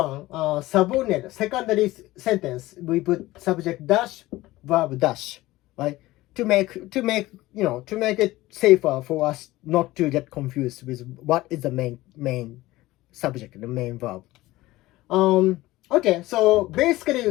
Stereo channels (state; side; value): quieter; right; 18.0 dB